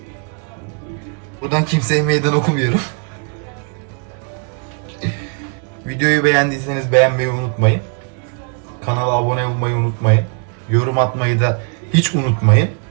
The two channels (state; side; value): quieter; left; 39.6 dB